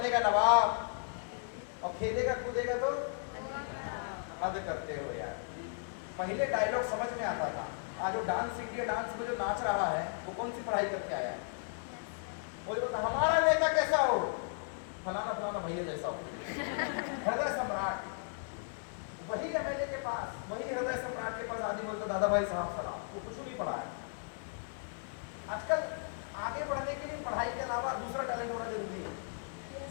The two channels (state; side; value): silent; right; digital silence